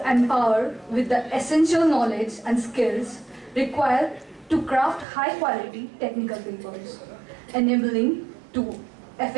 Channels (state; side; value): drops out; left; at 5.1 s